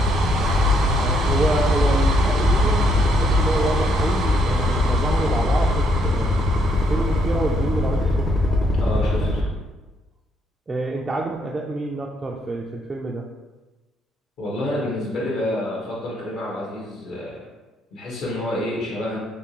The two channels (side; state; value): both; normal; correlation 0.72